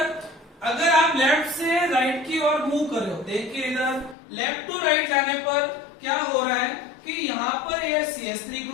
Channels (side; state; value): right; drops out; at 4.2 s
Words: अगर आप लेफ्ट से राइट की ओर मूव कर रहे हो, देखिए इधर लेफ्ट टू राइट जाने पर क्या हो रहा है कि यहाँ पर ये CH3